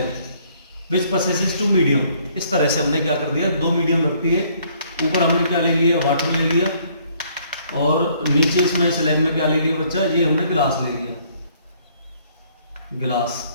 which possesses two medium. इस तरह से हमने क्या कर दिया, दो मीडियम रखती है। ऊपर हमने क्या ले लिया, वाटर ले लिया, और नीचे इसमें स्लैब में क्या ले लिया बच्चा, ये हमने गिलास ले लिया, गिलास।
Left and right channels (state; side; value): inverted; both; correlation -0.64